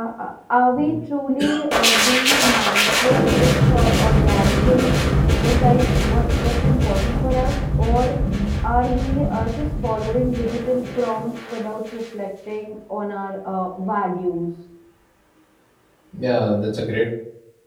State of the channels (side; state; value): both; identical; correlation 1.00